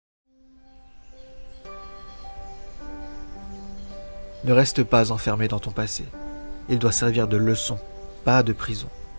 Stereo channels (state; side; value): inverted; both; correlation -1.00